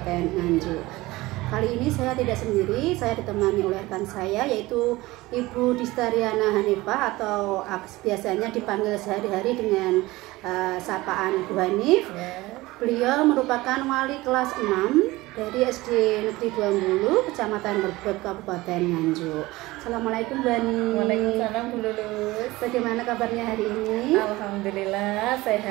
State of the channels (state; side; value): quieter; left; 19.6 dB